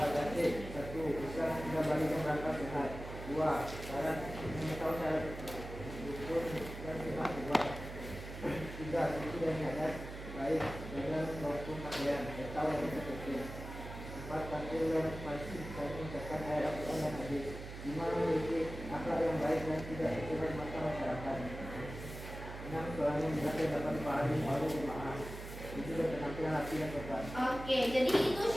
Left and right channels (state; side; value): noise; right; hum, 10 dB below the sound